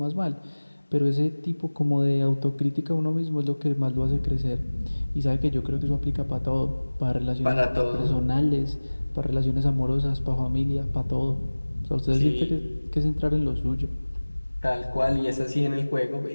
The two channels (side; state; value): both; inverted; correlation -1.00